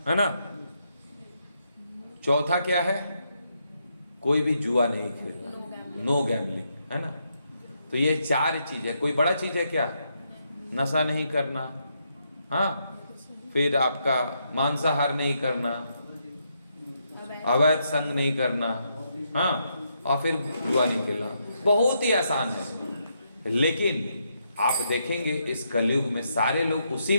है ना। चौथा क्या है? कोई भी जुआ नहीं खेलना, नो गैम्बलिंग, है ना। तो ये 4 चीज है। कोई बड़ा चीज है क्या? नशा नहीं करना, हाँ, फिर आपका मांसाहार नहीं करना, अवैध संग नहीं करना, हाँ, और फिर जुआ नहीं खेलना। बहुत ही आसान है। लेकिन आप देखेंगे इस कलयुग में सारे लोग उसी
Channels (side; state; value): both; inverted; correlation -0.79